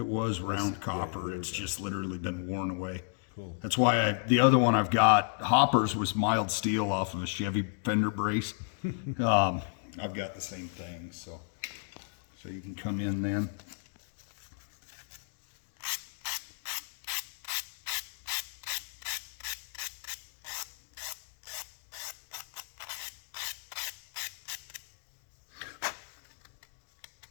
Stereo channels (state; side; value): silent; right; digital silence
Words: was round Yeah, copper. there It's we go. just literally been worn away. Cool. That's why the other one I've got, hoppers, was mild steel off of a Chevy fender brace. I've got the same thing, so you can come in then.